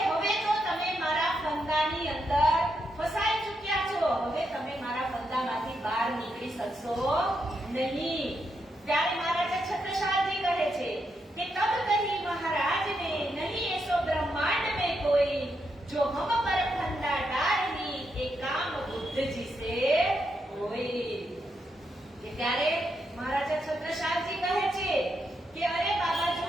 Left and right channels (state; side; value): normal; both; correlation 0.82